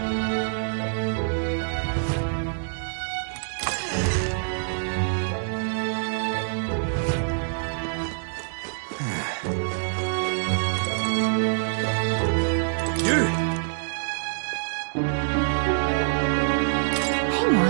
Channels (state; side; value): silent; left; digital silence